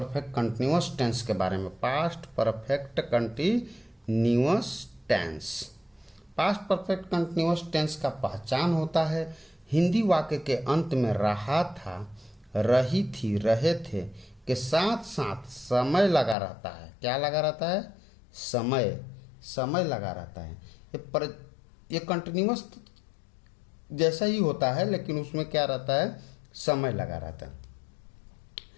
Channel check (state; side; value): drops out; right; at 16.4 s